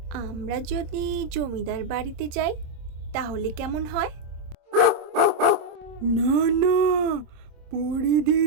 আমরা যদি জমিদার বাড়িতে যাই তাহলে কেমন হয়? না না, পড়ি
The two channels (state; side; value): late; left; 26 ms